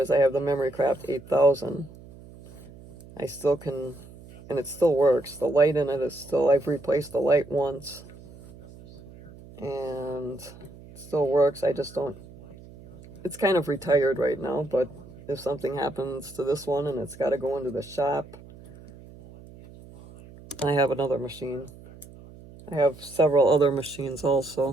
I have the Memory Craft 8000. I still can, and it still works. The light in it is still, I've replaced the light once. And it still works. I just don't, it's kind of retired right now, but if something happens to this one and it's got to go into the shop, I have another machine. I have several other machines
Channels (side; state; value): right; noise; hum, 19 dB below the sound